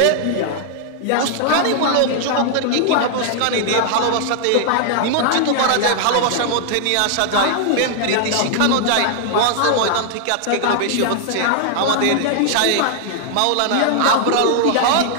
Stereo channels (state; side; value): different; both; correlation 0.00